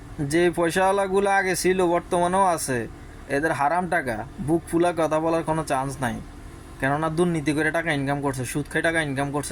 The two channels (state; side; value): identical; both; correlation 1.00